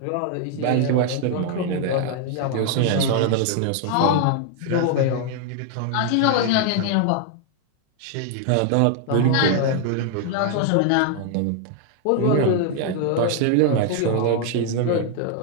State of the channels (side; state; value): both; different; correlation 0.00